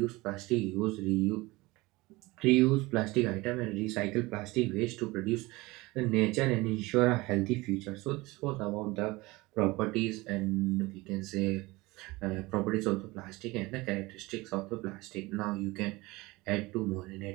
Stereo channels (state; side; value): quieter; left; 21.8 dB